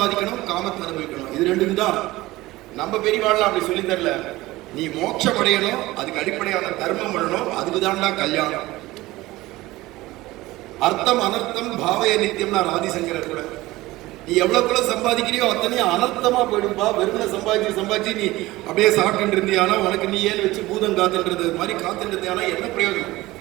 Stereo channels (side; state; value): left; quieter; 18.7 dB